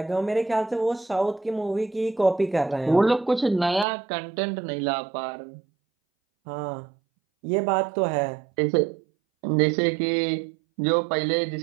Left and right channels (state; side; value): drops out; left; at 3.9 s